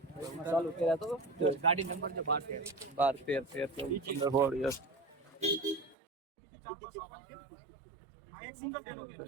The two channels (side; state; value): left; drops out; at 6.0 s